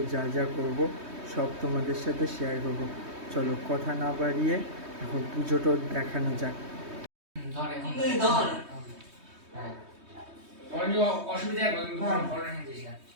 যা যা করবো সব তোমাদের সাথে শেয়ার করবো। চলো কথা না বাড়িয়ে এখন পুজোটা দেখানো যাক।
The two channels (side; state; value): left; late; 3.2 ms